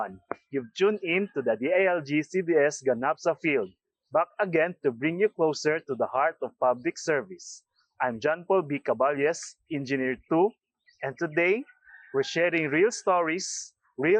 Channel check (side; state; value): both; identical; correlation 1.00